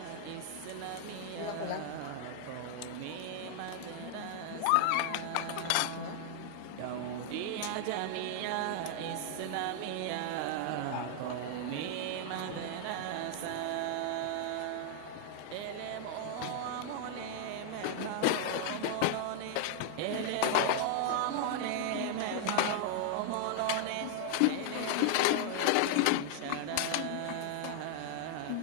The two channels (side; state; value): both; different; correlation 0.00